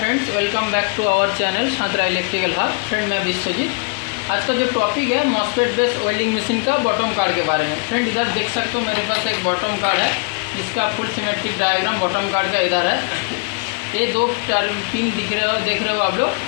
welcome back to our channel Shantara electrical hub. Friend मैं विश्वजीत। आज का जो टॉपिक है मॉसफेट बेस्ड वेल्डिंग मशीन का बॉटम कार्ड के बारे में। फ्रेंड इधर देख सकते हो मेरे पास एक बॉटम कार्ड है जिसका full symmetric diagram bottom card का इधर है। ये दो पिन देख रहे हो आप लोग।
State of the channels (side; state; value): right; quieter; 37.8 dB